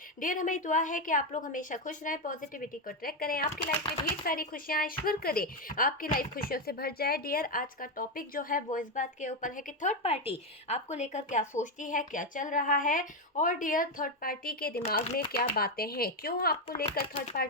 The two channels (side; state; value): both; normal; correlation 0.08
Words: डियर, हमें दुआ है कि आप लोग हमेशा खुश रहें, पॉजिटिविटी को ट्रैक करें, आपकी लाइफ में ढेर सारी खुशियां ईश्वर करे, आपकी लाइफ खुशियों से भर जाए। डियर, आज का टॉपिक जो है वो इस बात के ऊपर है कि थर्ड पार्टी आपको लेकर क्या सोचती है, क्या चल रहा है, और डियर थर्ड पार्टी के दिमाग में क्या बातें हैं, क्यों आपको लेकर थर्ड